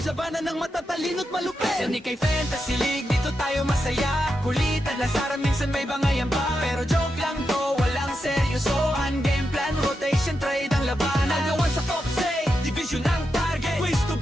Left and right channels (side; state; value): both; normal; correlation 0.86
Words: labanan ng matatalino't malupit. Senikay Fantasy League, dito tayo masaya. Kulitan, lasaran, minsan may bangayan pa. Pero joke lang to, walang seryosohan. Game plan, rotation, trade ang labanan. Nagawan sa top say, division ang target. Quiz to